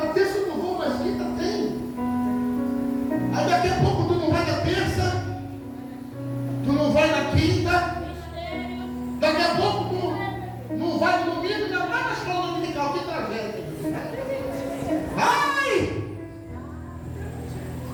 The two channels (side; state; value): both; identical; correlation 1.00